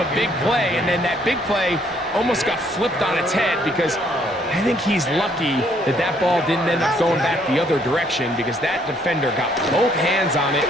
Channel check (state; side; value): normal; both; correlation 0.66